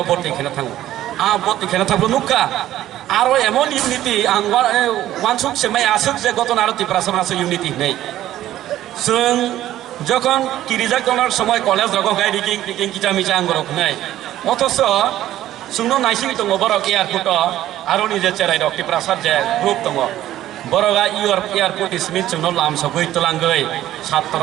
ভর্তি খেলে থাকবো ভর্তি খেলে থাকবো নুকা আরো এমন ইউনিটি আং ওয়ানসুক সেমাই আসুক যে গত আর ত্রিপুরাসা আছে ইউনিটি নেই जों যখন কিরিজা করার সময় কলেজ রকম গাই রিকিং রিকিং কিটা মিচা আঙ্গরক নাই অথচ जोंनो नायसिं दङ बरक एयारपोर्ट आरो निजे चेराइ दक टिप्रासार जे ग्रुप दङ बरगा एयारपोर्ट इसमिन जोंनो लाम सगै तलांगै छात्र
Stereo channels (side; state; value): left; quieter; 13.4 dB